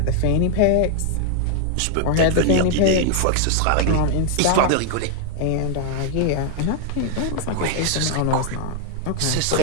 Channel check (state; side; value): different; both; correlation 0.00